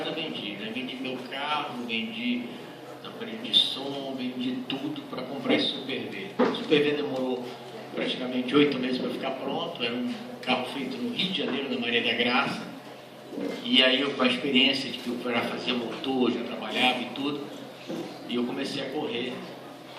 vendi, né? Vendi meu carro, vendi aparelho de som, vendi tudo para comprar esse Super V. O Super V demorou praticamente 8 meses para ficar pronto, era um carro feito no Rio de Janeiro, na Maria da Graça, e aí eu, com a experiência de que eu já fazia motor, já trabalhava e tudo, e eu comecei a correr,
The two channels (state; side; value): identical; both; correlation 1.00